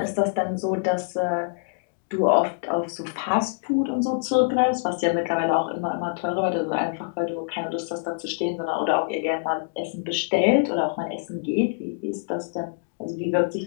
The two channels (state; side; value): silent; right; digital silence